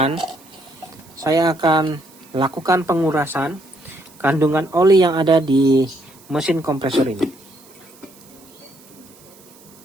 saya akan lakukan pengurasan kandungan oli yang ada di mesin kompresor ini.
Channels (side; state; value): right; noise; hiss, 25 dB below the sound